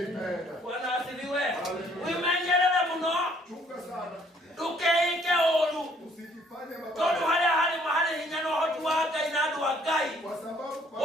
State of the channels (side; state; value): both; normal; correlation 0.62